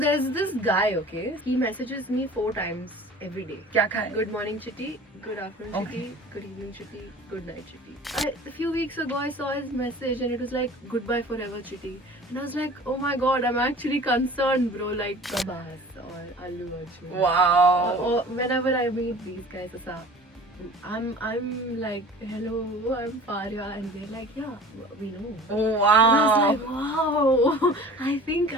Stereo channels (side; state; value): both; normal; correlation 0.43